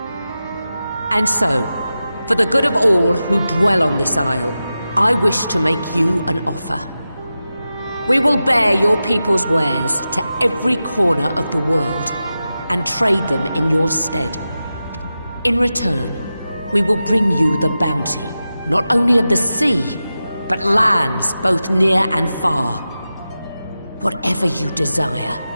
And so, for the good of all who dwell on this isle, I wish to make you an offer. We will bear your people's wares to every corner of the world, and trade them in your stead. In return, we will bring you the bounty, not only of the sea, but lands both near and far. Whatever you desire,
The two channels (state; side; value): inverted; both; correlation -0.93